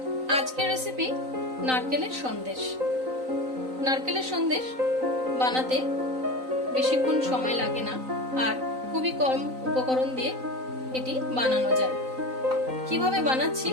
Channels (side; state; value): left; late; 3.9 ms